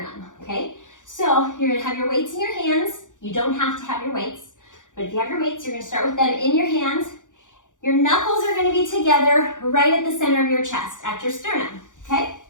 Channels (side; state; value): right; late; 0.87 ms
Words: okay? So you're gonna have your weights in your hands. You don't have to have your weights, but if you have your weights, you're gonna start with them in your hands. Your knuckles are gonna be together right at the center of your chest, at your sternum, okay?